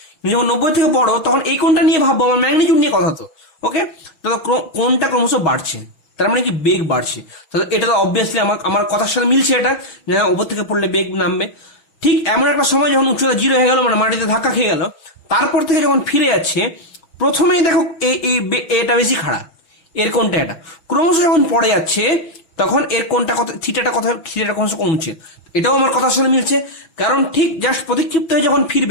যখন 90 থেকে বড় তখন এই কোণটা নিয়ে ভাববো, আমার ম্যাগনিটিউড নিয়ে কথা তো। ওকে, তাহলে কোণটা ক্রমশ বাড়ছে, তার মানে কি বেগ বাড়ছে, তাহলে এটা তো অবভিয়াসলি আমার কথার সাথে মিলছে, এটা যে ওপর থেকে পড়লে বেগ নামবে। ঠিক এমন একটা সময় যখন উচ্চতা 0 হয়ে গেল, মানে মাটিতে ধাক্কা খেয়ে গেল, তারপর থেকে যখন ফিরে যাচ্ছে প্রথমেই দেখো এটা বেশি খাড়া, এর কোণটা এটা, ক্রমশ যখন পড়ে যাচ্ছে তখন এর কোণটা কত, থিটাটা ক্রমশ কমছে। এটাও আমার কথার সঙ্গে মিলছে, কারণ ঠিক জাস্ট প্রতিক্ষিপ্ত হয়ে যখন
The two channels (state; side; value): late; right; 6.0 ms